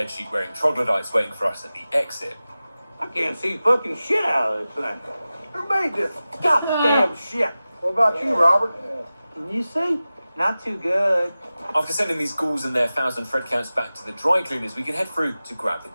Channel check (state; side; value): inverted; both; correlation -0.96